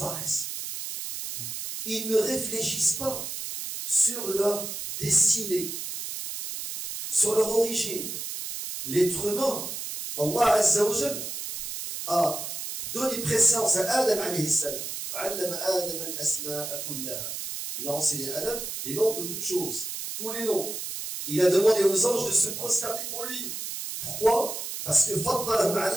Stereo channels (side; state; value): right; noise; hiss, 6 dB below the sound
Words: Ils ne réfléchissent pas sur leur destinée, sur leur origine. L'être humain, Allah Azza wa Jal, a donné préséance à Adam alayhi salam. Il a enseigné à Adam les noms de toutes choses, tous les noms. Il a demandé aux anges de se prosterner pour lui. Pourquoi? Parce que